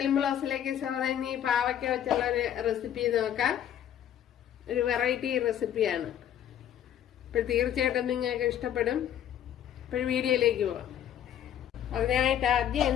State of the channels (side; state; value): right; quieter; 10.3 dB